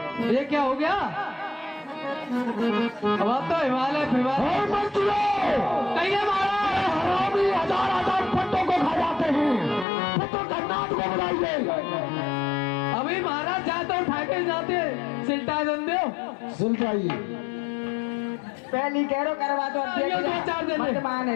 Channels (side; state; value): right; drops out; at 9.9 s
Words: ये क्या हो गया? अब आप तो हिमालय कहीं हरामी 1000 पट्टों को खा जाते हैं। तो कर्नाट को बुलाइए। अभी महाराज जाते उठा के जाते सिलटा दे दो। सिलटाइए। पहली कह रो करवा दो। आइयो, 2-4 दिन मत